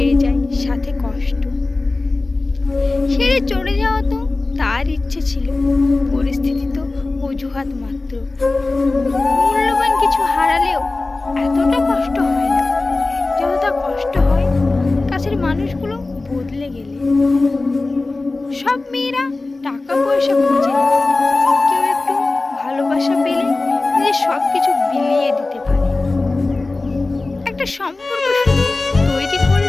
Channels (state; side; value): quieter; right; 3.3 dB